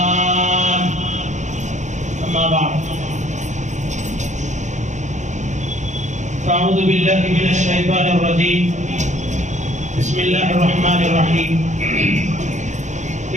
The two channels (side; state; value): left; late; 0.35 ms